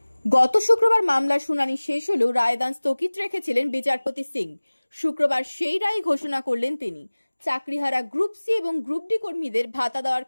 গত শুক্রবার মামলার শুনানি শেষ হলেও রায়দান স্থগিত রেখেছিলেন বিচারপতি সিং। শুক্রবার সেই রায় ঘোষণা করলেন তিনি। চাকরিহারা গ্রুপ সি এবং গ্রুপ ডি কর্মীদের ভাতা দেওয়ার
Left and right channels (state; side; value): inverted; both; correlation -1.00